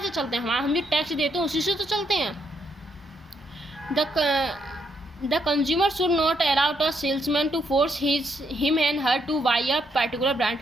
से चलते हैं, हम जो टैक्स देते हैं उसी से तो चलते हैं। The consumer should not allow a salesman to force him and her to buy a particular brand।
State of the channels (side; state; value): both; normal; correlation 0.75